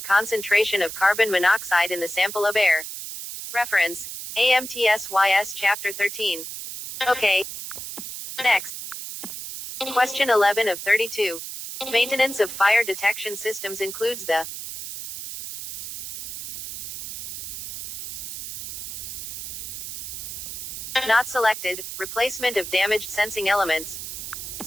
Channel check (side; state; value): right; noise; hiss, 8 dB below the sound